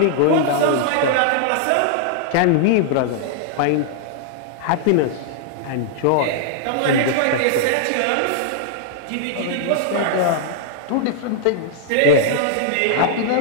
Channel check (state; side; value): different; both; correlation -0.01